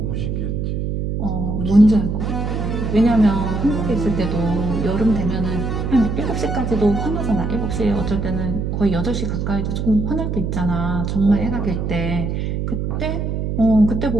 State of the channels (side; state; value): right; noise; hum, 2 dB below the sound